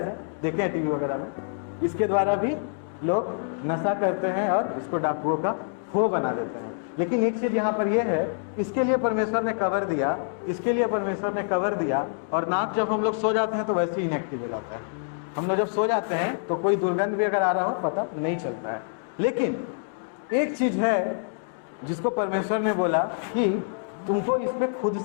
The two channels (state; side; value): silent; right; digital silence